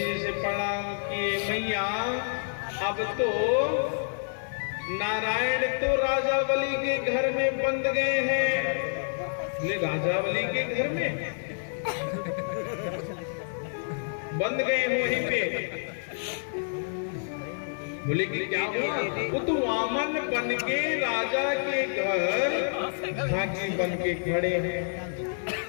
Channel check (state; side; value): silent; right; digital silence